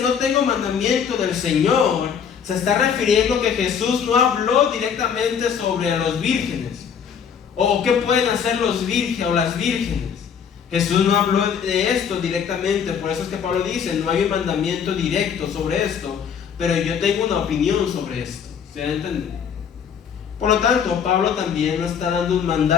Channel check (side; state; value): right; quieter; 7.4 dB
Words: no tengo mandamiento del Señor, se está refiriendo que Jesús no habló directamente sobre los vírgenes o qué pueden hacer los vírgenes o las vírgenes. Jesús no habló de esto directamente. Por eso es que Pablo dice no hay un mandamiento directo sobre esto, pero yo tengo una opinión sobre esto. ¿Se va a entender? Por lo tanto, Pablo también no está dando un